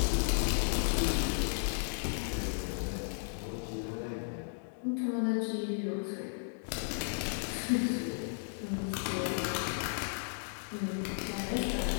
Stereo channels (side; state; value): right; silent; digital silence